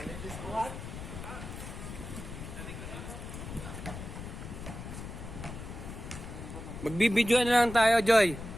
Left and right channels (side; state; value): left; noise; rumble, 9 dB below the sound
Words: What? Magbibidyoan na lang tayo, Joy.